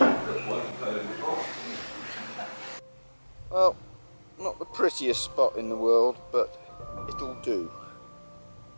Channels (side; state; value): both; inverted; correlation -1.00